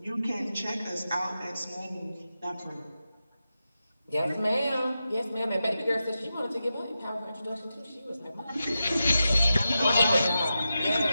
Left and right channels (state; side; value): inverted; both; correlation -0.90